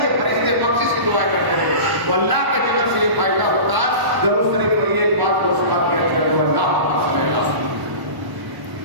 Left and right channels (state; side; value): late; left; 1.0 ms